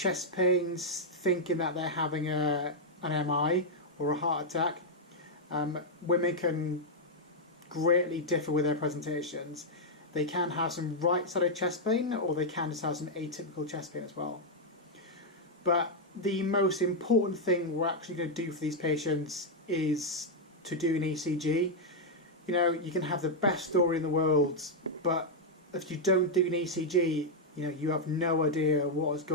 pains, thinking that they're having an MI or a heart attack, women can greatly differ with their presentations. They can have some right-sided chest pain, or they can just have some atypical chest pain as well. But the most important thing we're actually going to do for these patients is to do an ECG. You know, you can have the best story in the world, but if you don't do an ECG, you know, you have no idea what is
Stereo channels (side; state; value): both; normal; correlation -0.03